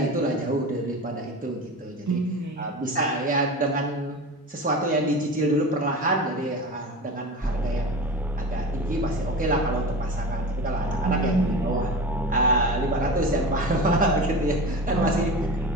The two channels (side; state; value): both; normal; correlation 0.30